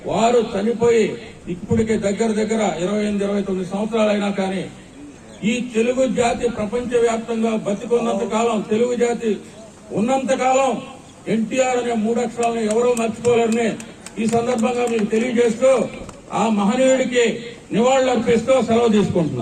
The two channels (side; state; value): both; identical; correlation 1.00